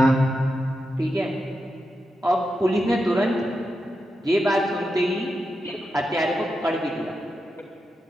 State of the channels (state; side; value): normal; both; correlation 0.88